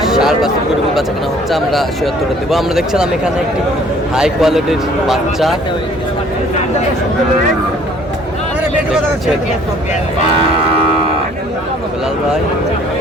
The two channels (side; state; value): both; normal; correlation 0.56